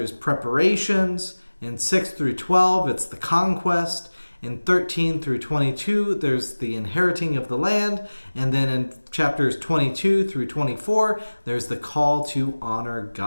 preparations. In 6 through 12, it's the conquest. In 13 through 22, there's the inheriting of the land. And then in chapters 22 through 24, there's the call to honor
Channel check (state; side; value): inverted; both; correlation -1.00